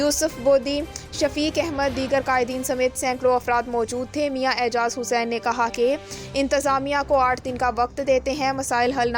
बोदी, शफीक अहमद, दीगर कायदीन समेत सैकड़ों अफराद मौजूद थे। मियां एजाज हुसैन ने कहा कि इंतज़ामिया को 8 दिन का वक्त देते हैं, मसाइल हल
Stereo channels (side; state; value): both; identical; correlation 1.00